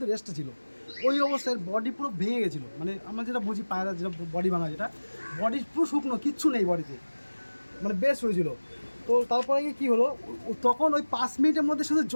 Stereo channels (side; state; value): both; inverted; correlation -1.00